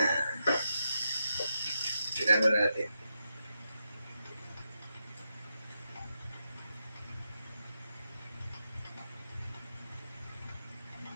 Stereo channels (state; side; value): inverted; both; correlation -0.86